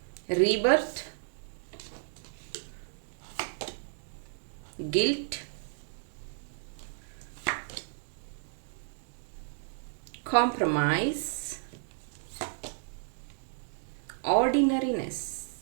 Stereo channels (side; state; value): left; silent; digital silence